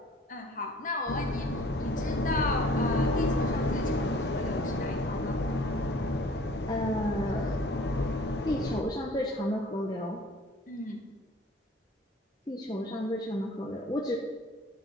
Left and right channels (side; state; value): both; normal; correlation 0.52